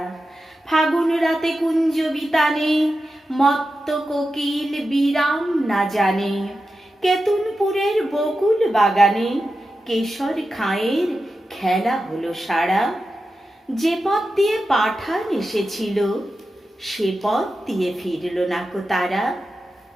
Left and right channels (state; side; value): normal; both; correlation 0.91